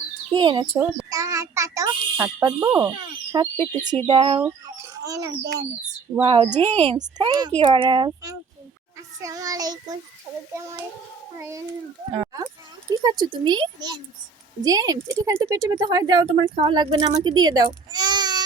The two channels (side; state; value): left; quieter; 5.2 dB